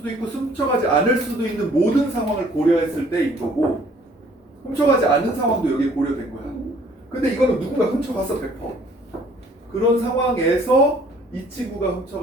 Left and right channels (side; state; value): both; normal; correlation 0.58